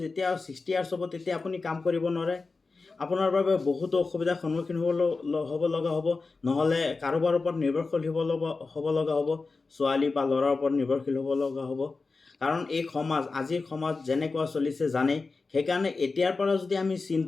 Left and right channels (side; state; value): right; quieter; 4.0 dB